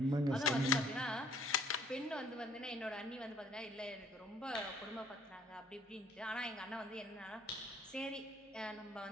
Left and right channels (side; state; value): both; normal; correlation 0.60